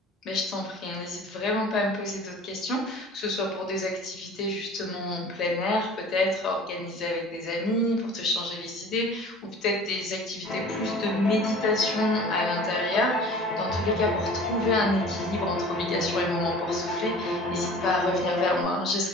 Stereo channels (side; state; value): both; normal; correlation 0.44